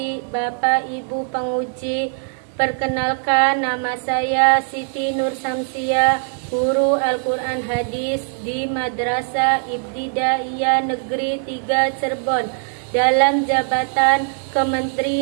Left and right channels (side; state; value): left; silent; digital silence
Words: Bapak Ibu penguji, perkenalkan nama saya Siti Nur Samsia, guru Al-Quran Hadis di Madrasah Ibtidaiyah Negeri 3 Cirebon, dalam jabatan